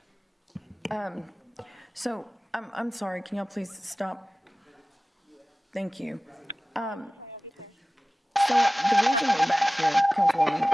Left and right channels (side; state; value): both; normal; correlation 0.97